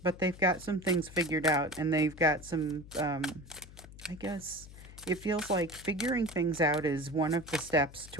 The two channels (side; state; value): left; noise; hum, 18 dB below the sound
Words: But they've got some things figured out, and they've got some, I guess it feels like figuring things out is one of the steps